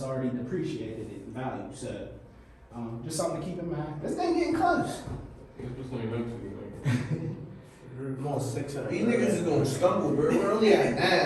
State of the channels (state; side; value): identical; both; correlation 1.00